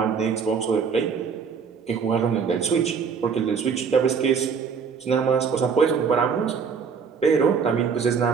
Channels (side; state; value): left; quieter; 6.1 dB